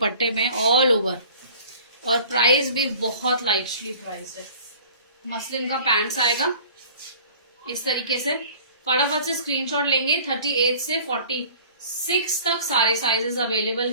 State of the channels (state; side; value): inverted; both; correlation -0.47